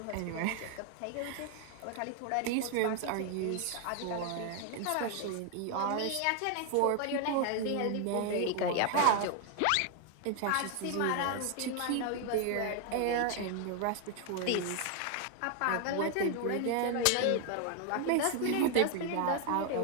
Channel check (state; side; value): different; both; correlation 0.00